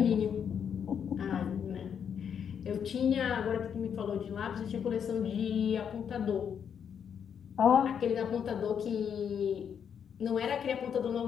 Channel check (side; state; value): right; quieter; 7.8 dB